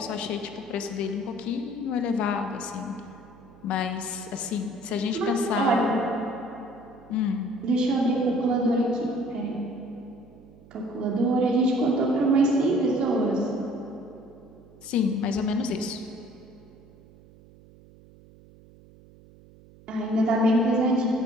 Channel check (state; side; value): noise; right; hum, 24 dB below the sound